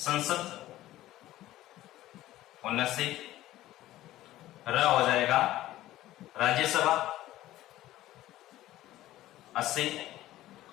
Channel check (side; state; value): right; quieter; 15.1 dB